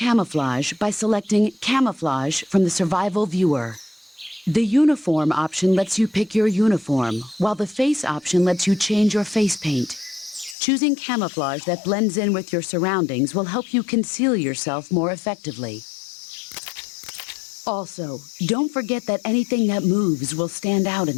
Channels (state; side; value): drops out; right; at 10.6 s